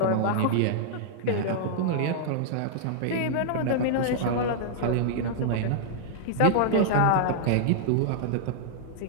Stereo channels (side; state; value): both; different; correlation -0.01